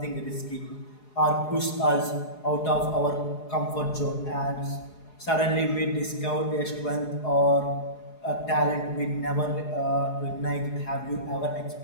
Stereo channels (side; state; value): right; late; 4.8 ms